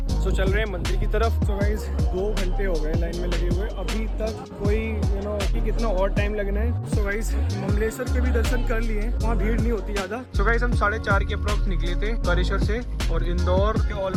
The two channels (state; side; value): identical; both; correlation 1.00